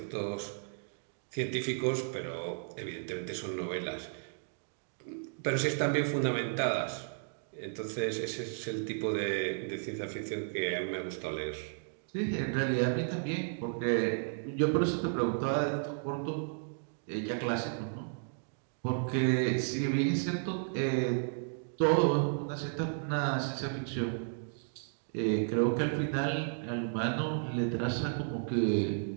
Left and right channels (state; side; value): silent; left; digital silence